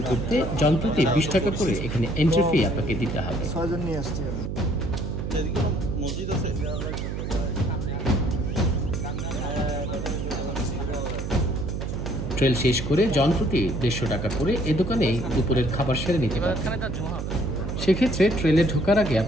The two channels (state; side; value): noise; right; hum, 4 dB below the sound